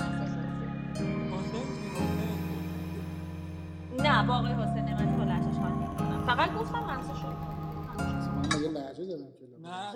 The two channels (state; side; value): identical; both; correlation 1.00